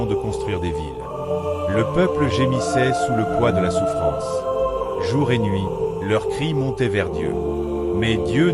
de construire des villes. Le peuple gémissait sous le poids de la souffrance. Jour et nuit, leurs cris montaient vers Dieu. Mais Dieu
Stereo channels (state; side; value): identical; both; correlation 1.00